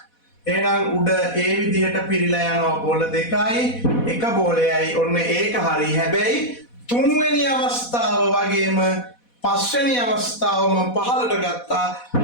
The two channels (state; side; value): late; right; 4.1 ms